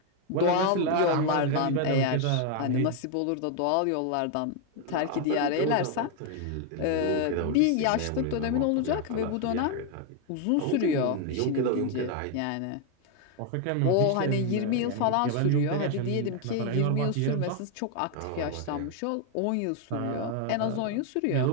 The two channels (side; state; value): both; different; correlation 0.01